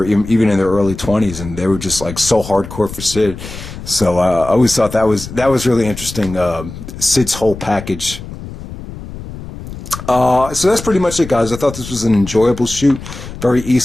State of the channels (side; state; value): left; noise; rumble, 12 dB below the sound